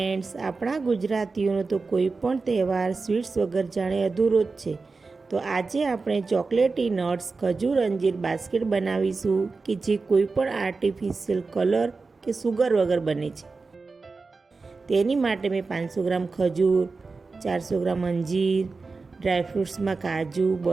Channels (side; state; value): left; quieter; 4.1 dB